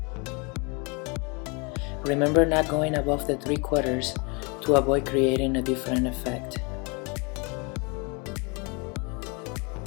Remember not going above the 3/4 to avoid creating a different effect.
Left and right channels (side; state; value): right; quieter; 30.9 dB